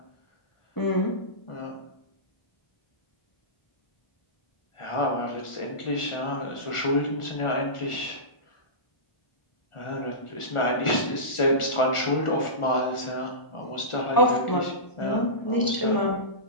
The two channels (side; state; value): right; late; 1.4 ms